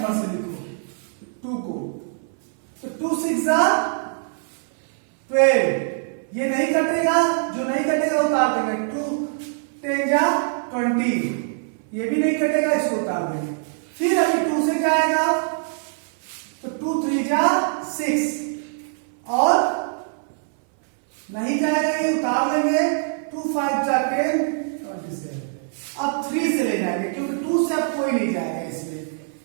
से लिखो 2 को। तो 2 6 12, ये नहीं कटेगा, जो नहीं कटेगा उतार देंगे। 2 10 20, ये भी नहीं कटेगा, इसको उतार देंगे। फिर अभी 2 से क्या आएगा, तो 2 3 6, और नहीं जाएगा, ये उतार लेंगे। 2 5 10 27। अब 3 से ले जाएंगे क्योंकि 2 से अब कोई नहीं जाएगा इसमें।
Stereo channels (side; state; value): left; silent; 60 dB below the other